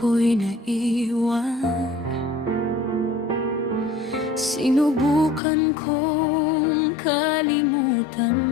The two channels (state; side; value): drops out; right; at 5.4 s